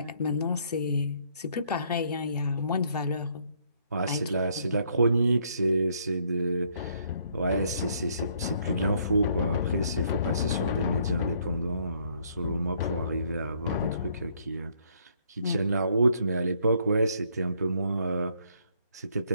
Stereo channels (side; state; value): both; inverted; correlation -0.68